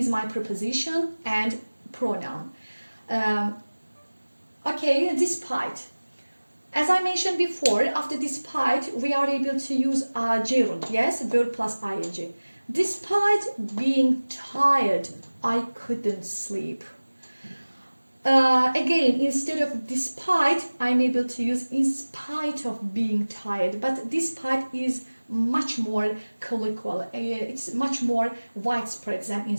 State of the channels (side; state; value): both; inverted; correlation -1.00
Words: my preposition and pronoun. Okay, despite. As I mentioned before, after despite, we are able to use gerund, yes, verb plus ing. Despite being tired, I couldn't sleep. Again, instead of despite, I'm able to use in spite of being tired, but despite is much more colloquial, it's much more widespread than